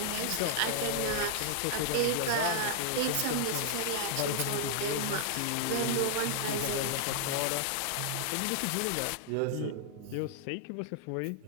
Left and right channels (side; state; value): both; different; correlation -0.01